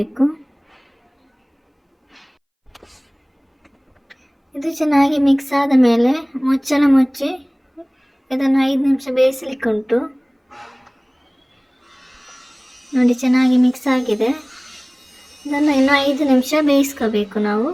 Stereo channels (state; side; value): identical; both; correlation 1.00